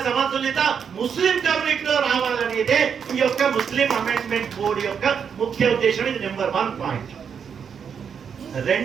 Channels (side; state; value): left; quieter; 7.1 dB